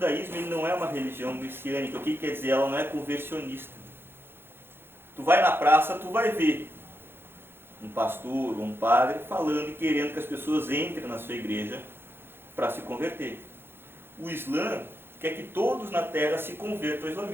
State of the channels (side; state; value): left; late; 0.11 ms